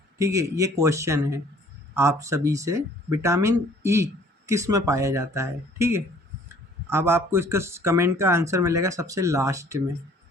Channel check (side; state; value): both; normal; correlation 0.56